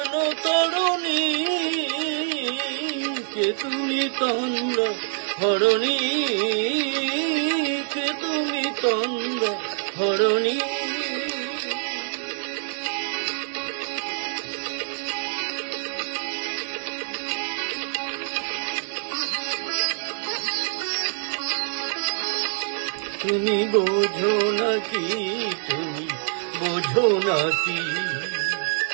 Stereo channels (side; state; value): left; silent; 59 dB below the other